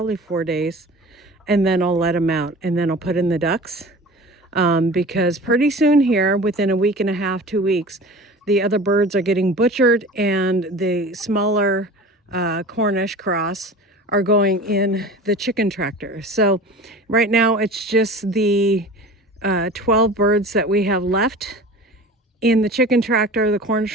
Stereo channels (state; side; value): normal; both; correlation 0.38